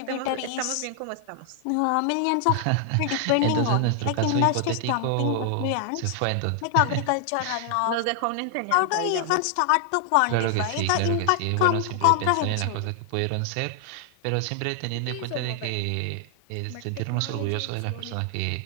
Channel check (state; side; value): different; both; correlation 0.00